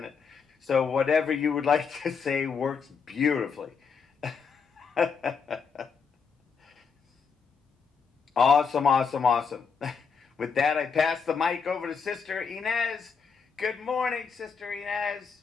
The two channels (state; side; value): quieter; right; 5.8 dB